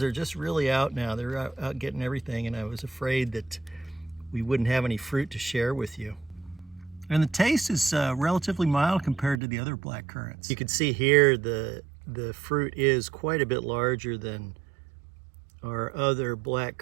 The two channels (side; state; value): left; drops out; at 9.4 s